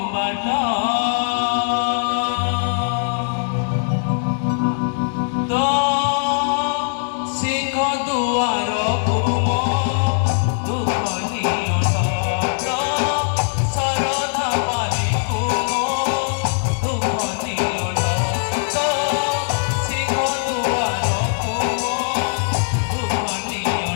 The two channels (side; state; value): right; silent; digital silence